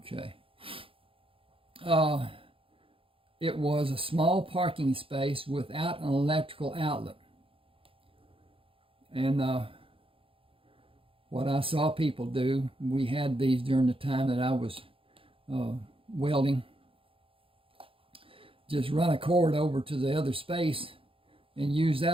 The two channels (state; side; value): late; left; 0.26 ms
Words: It was a small parking space without an electrical outlet. And what I saw people do, we had these during the time that I was welding. Just run a cord over to the other space and use